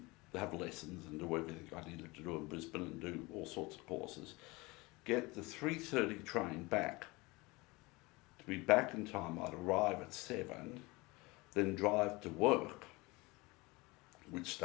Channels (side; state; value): right; quieter; 23.8 dB